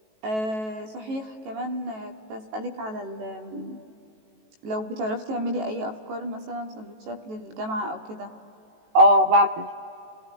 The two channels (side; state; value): left; late; 18 ms